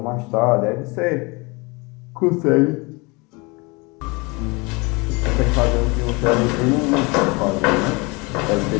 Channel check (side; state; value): right; quieter; 27.2 dB